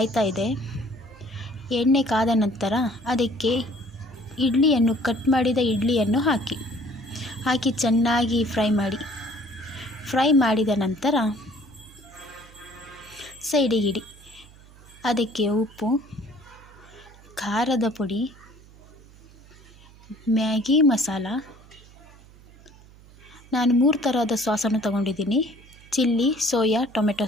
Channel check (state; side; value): noise; right; hum, 23 dB below the sound